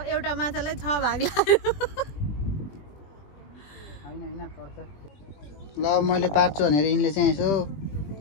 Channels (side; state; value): right; late; 21 ms